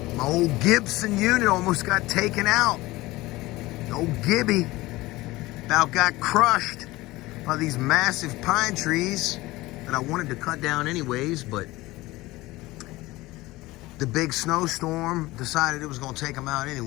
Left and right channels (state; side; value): quieter; right; 19.4 dB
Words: My old Gibson unit almost got taken out. The old Gibby about got crushed by these massive pine trees that I wanted to cut down anyways, but the big snowstorm decided it was gonna take them out